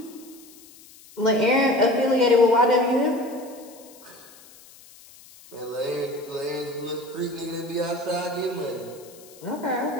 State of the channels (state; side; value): noise; left; hiss, 22 dB below the sound